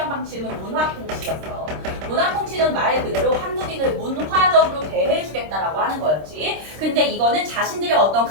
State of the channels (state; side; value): late; left; 26 ms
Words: 방식은 문화 통치였어. 문화 통치는 말 그대로 한국인을 문화적으로 대해주겠다라고 하는 거였지. 근데 이거는 자신들의 어떤